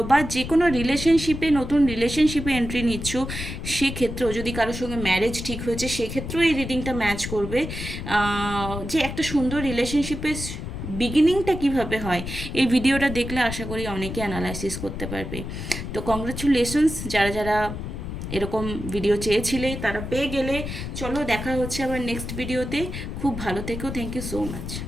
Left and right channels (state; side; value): noise; left; rumble, 7 dB below the sound